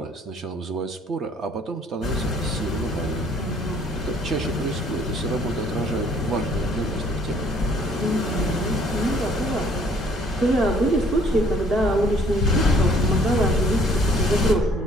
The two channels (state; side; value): normal; both; correlation 0.60